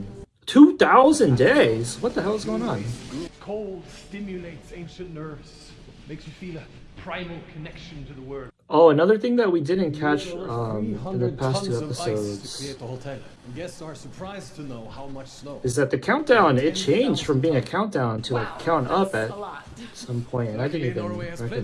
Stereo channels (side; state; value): both; identical; correlation 1.00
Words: 2,000 days? What the hell is going on? Cold stimulates ancient nerves, makes you feel a primal connection to the world. Oh, another thing that we didn't catch in the past 2 episodes guests are surprised to know how much snow is that the countdown, it changed from being a countdown to like count up at some point, and I didn't even